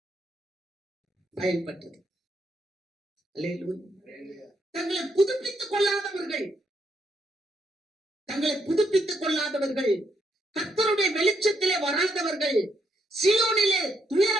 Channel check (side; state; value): both; normal; correlation 0.76